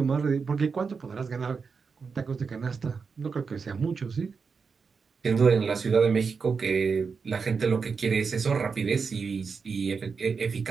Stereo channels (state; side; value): quieter; left; 5.3 dB